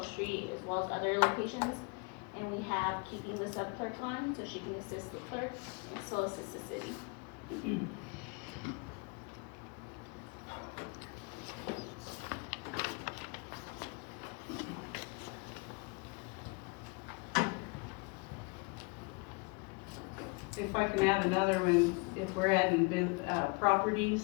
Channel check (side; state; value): right; quieter; 30.4 dB